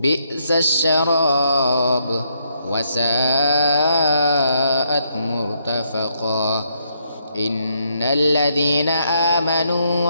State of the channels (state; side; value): inverted; both; correlation -0.74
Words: الشراب وساءت مرتفقا إن الذين آمنوا